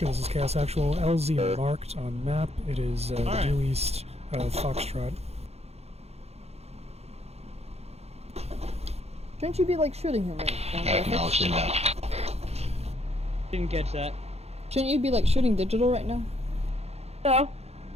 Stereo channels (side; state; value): left; late; 0.30 ms